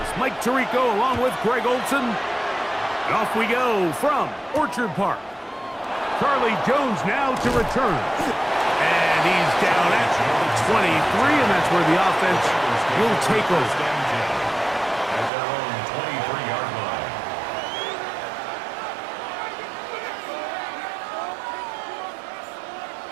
Mike Tirico along with Greg Olson. And off we go from Orchard Park. Charlie Jones now to return. And he's down at 23, and that's where the offense will take over. At their own 23-yard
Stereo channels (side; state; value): left; drops out; at 15.3 s